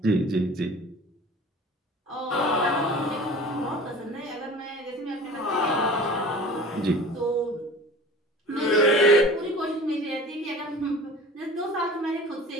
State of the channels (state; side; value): normal; both; correlation 0.42